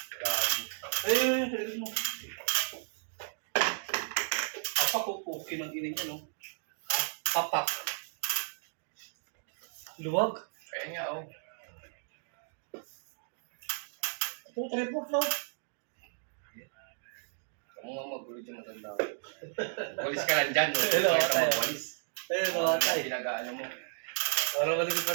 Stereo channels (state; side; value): silent; left; digital silence